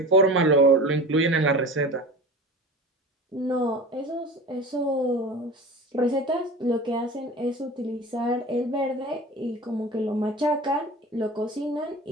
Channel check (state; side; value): normal; both; correlation 0.35